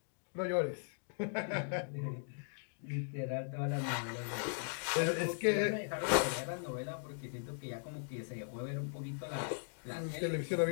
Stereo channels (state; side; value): silent; right; digital silence